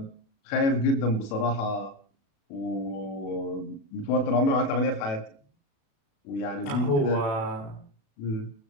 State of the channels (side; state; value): right; late; 36 ms